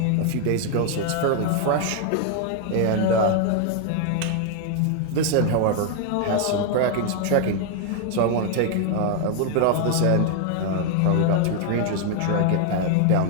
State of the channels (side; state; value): both; different; correlation 0.00